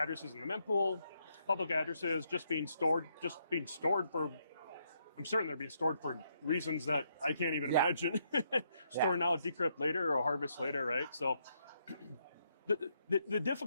in the mempool, public addresses just being stored for, I'm certain they're being stored for reasons that I can't even imagine. Store now, decrypt later, or harvest later, right? So the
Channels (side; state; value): both; inverted; correlation -0.76